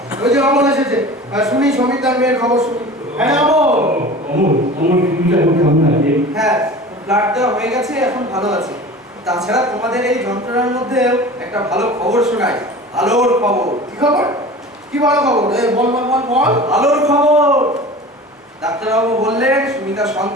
ওই যে অমল এসেছে, শুনি সমিতার মেয়ের খবর শুনি। হ্যাঁ অমল, হ্যাঁ, ব্লাড দেওয়া হয়ে গেছে, এখন ভালো আছে। তাছাড়া তোমাদের এই যন্ত্রণার মধ্যে একটা ভালো খবর শোনাই। আলোর খবর। কি খবর? কি ভালো খবর? বল। আলোর খবর। ডাক্তারবাবু বললেন সুমিতা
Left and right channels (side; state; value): both; normal; correlation 0.38